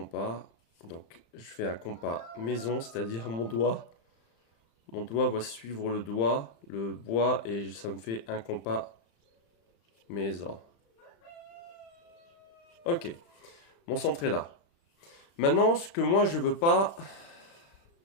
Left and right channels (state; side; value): late; right; 35 ms